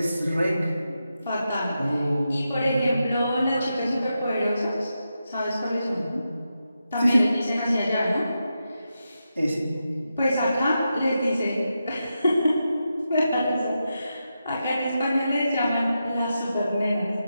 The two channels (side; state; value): both; inverted; correlation -0.88